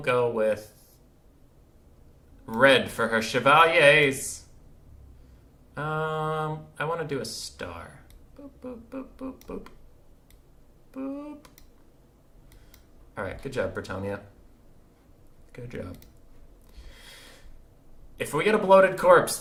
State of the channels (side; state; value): both; identical; correlation 1.00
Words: with red for her chevaliers. I want to do a star. Boop, boop, boop, boop, boop. Boop. Alright, good job, Bretonnia. Good job. If we get a bloated corpse,